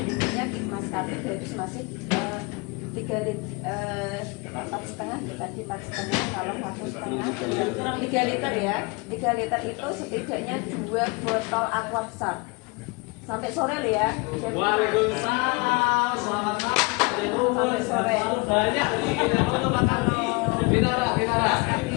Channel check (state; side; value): quieter; right; 28.7 dB